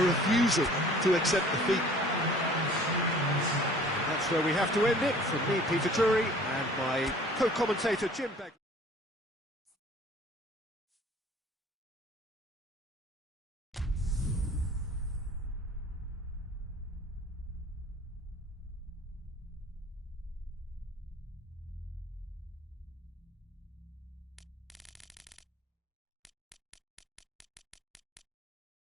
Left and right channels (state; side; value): normal; both; correlation 0.50